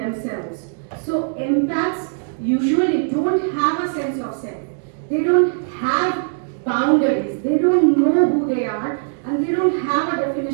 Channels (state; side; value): silent; left; digital silence